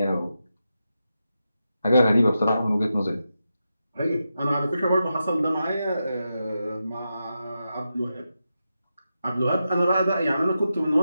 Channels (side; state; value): both; inverted; correlation -0.88